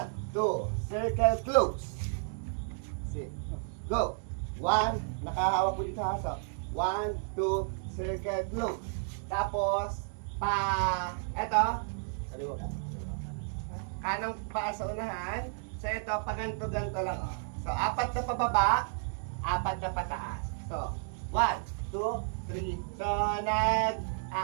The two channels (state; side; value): silent; left; digital silence